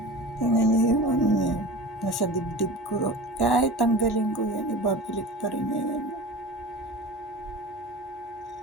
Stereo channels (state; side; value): normal; both; correlation 0.34